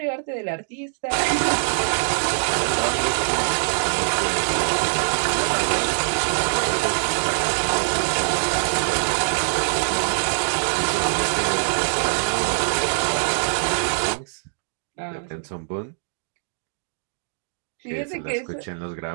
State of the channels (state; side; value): silent; left; digital silence